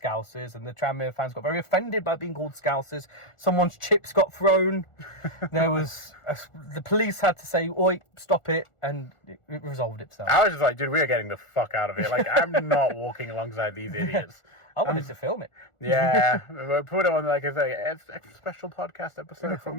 Scousers, and the Tranmere fans got very offended by being called Scousers. Someone's chips got thrown. There was the police had to say, "Oi, stop it," and it resolved itself. I was just like, dude, we are getting the fuck out of here. Like, I'm not walking alongside these idiots. I wanted to film it. Yeah, put it on like a special podcast episode from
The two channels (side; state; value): right; late; 1.4 ms